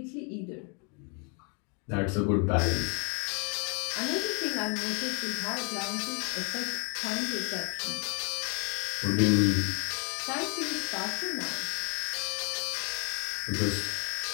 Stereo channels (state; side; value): quieter; right; 36.4 dB